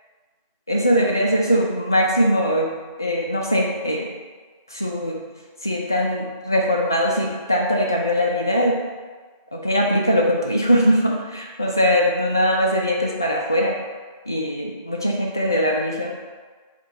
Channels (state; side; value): inverted; both; correlation -0.62